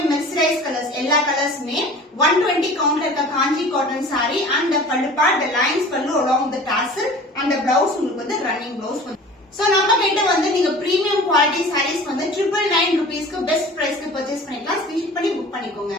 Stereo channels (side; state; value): both; normal; correlation 0.42